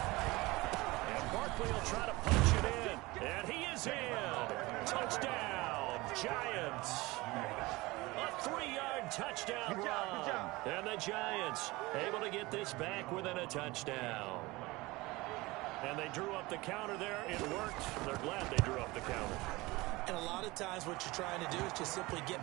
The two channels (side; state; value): left; quieter; 21.7 dB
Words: Giants. A 3-yard touchdown Good job. And the Giants able to get this back within a touchdown. And they drew up the counter there. It worked. They're glad they drew up the counter. And a lot of times what you're trying to do is just simply get